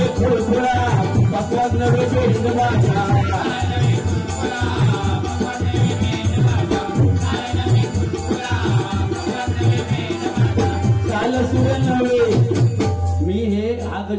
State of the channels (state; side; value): identical; both; correlation 1.00